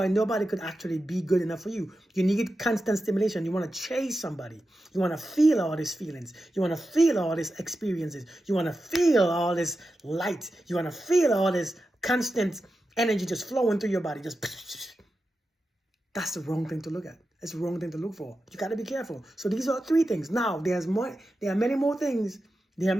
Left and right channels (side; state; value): both; normal; correlation 0.91